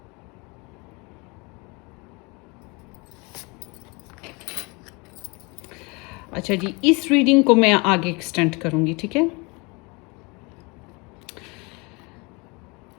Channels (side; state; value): right; quieter; 28.1 dB